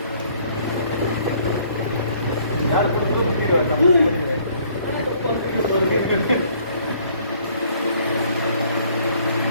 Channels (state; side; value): inverted; both; correlation -0.61